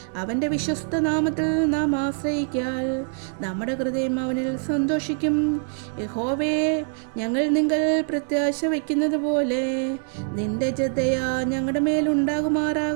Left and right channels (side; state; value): left; silent; 61 dB below the other